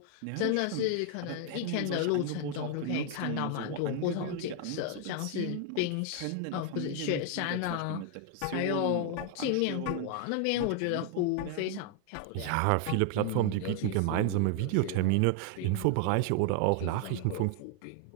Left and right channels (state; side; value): different; both; correlation 0.00